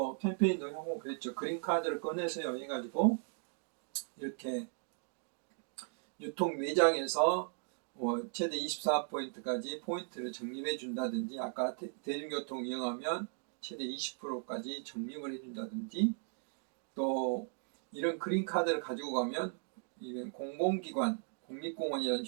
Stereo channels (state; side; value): silent; left; 53 dB below the other